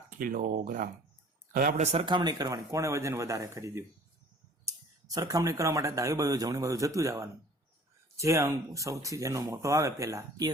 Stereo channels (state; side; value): normal; both; correlation 0.49